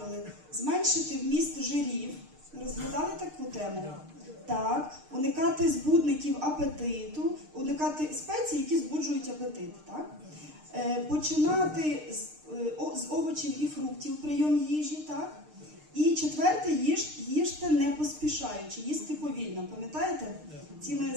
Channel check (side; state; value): left; late; 6.6 ms